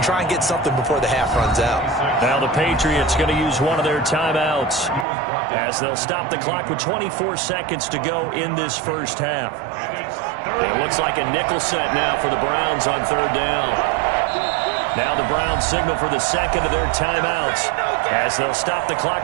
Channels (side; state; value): left; drops out; at 5.1 s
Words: try and get something before the half runs out. Now the Patriots going to use one of their timeouts as they'll stop the clock with 24 seconds to go in this first half. It looks like a nickel set now for the Browns on third down. Now the Browns signal for the second of their timeouts as they'll stop the